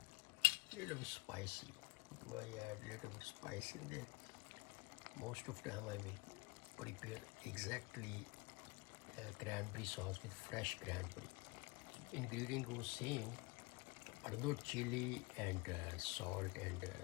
little bit spicy. Do I add a little bit spice in there? Most of the time I will prepare exactly cranberry sauce with fresh cranberry. Ingredient goes same, but not chili and salt and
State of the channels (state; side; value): quieter; right; 25.9 dB